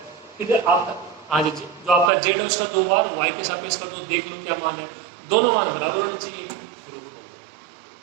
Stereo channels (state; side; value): drops out; left; at 2.1 s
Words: फिर आप हाँ जी, जो आपका z है उसका 2 बार y के सापेक्ष कर दो, देख लो क्या मान है। दोनों मान बराबर होने चाहिए, प्रूफ हो